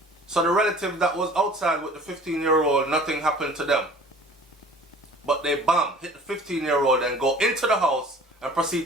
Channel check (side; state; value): both; normal; correlation 0.48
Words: so the relative that was outside with the 15-year-old, nothing happened to them. But they hit the 15-year-old and go into the house and